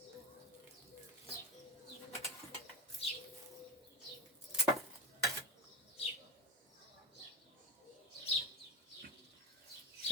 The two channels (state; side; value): normal; both; correlation 0.19